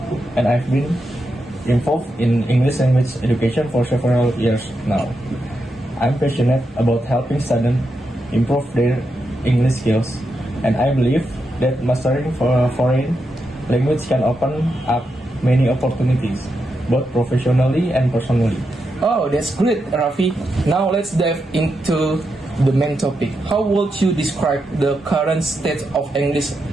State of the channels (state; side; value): normal; both; correlation 0.85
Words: and I've been involved in English language education for several years now. I'm passionate about helping students improve their English skills, and I believe that mastering foreign language can open up many opportunities, both professionally and personally. Oh, that's great, Rafi. Now let's dive into the main topic. How would you describe the current state of English